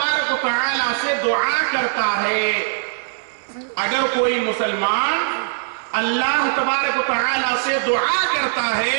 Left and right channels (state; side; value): silent; left; 65 dB below the other